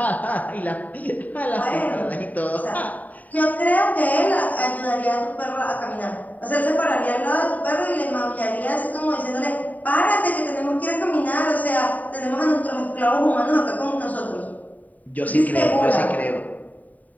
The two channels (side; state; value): right; late; 0.074 ms